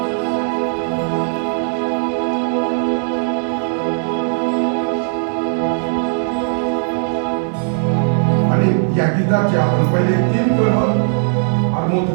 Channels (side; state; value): left; silent; 67 dB below the other